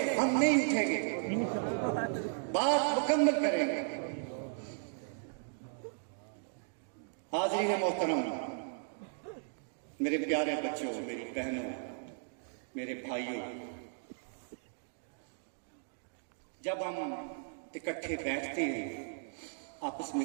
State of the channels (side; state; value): left; silent; digital silence